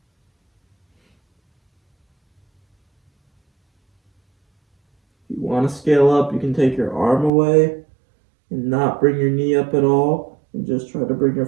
If you want to scale up, you can take your arm away and not bring your knee up at all, and just try to bring your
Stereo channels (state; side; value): drops out; left; at 7.3 s